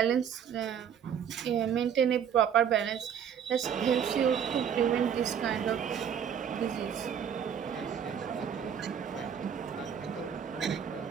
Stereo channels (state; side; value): quieter; left; 8.2 dB